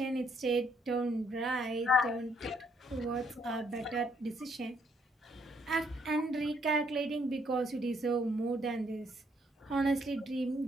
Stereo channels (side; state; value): both; normal; correlation 0.70